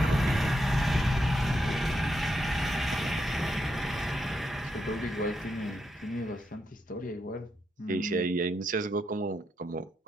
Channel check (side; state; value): both; normal; correlation 0.82